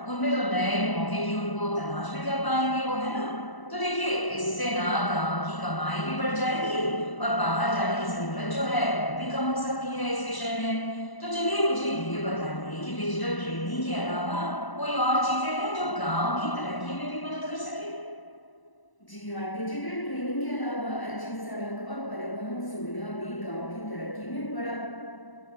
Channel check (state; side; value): late; right; 1.0 ms